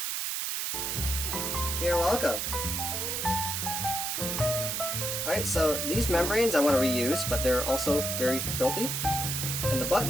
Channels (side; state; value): right; noise; hiss, 1 dB below the sound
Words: You're welcome. Alright, so these membranes I want to reuse, but they're also very filthy. And the